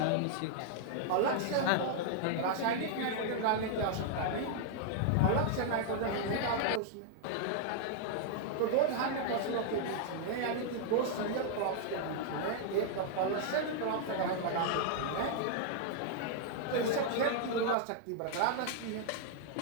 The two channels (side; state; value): both; different; correlation -0.01